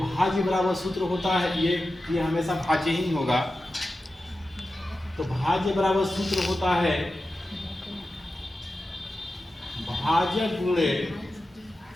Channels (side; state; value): both; normal; correlation 0.93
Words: बराबर सूत्र होता है, ये हमेशा भाज्य ही होगा। तो भाज्य बराबर सूत्र होता है भाजक गुणे